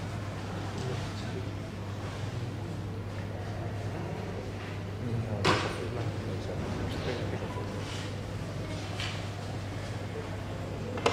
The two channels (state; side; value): identical; both; correlation 1.00